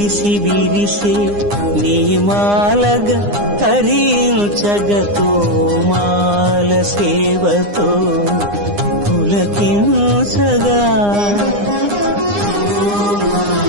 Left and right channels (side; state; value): left; late; 9.8 ms